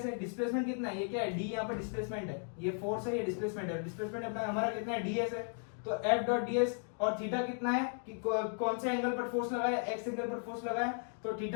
है, डिस्प्लेसमेंट कितना है, ये क्या है, d यहाँ पर डिस्प्लेसमेंट है, ये फोर्स है, ये डिस्प्लेसमेंट है, डिस्प्लेसमेंट अपना हमारा कितना है, ds है। तो f डॉट ds, और थीटा कितना है कि कौन से एंगल पर फोर्स लगाया, x एंगल पर फोर्स लगाया, तो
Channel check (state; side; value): silent; right; 54 dB below the other